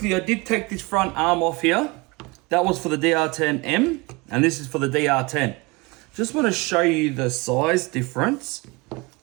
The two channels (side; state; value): left; quieter; 25.4 dB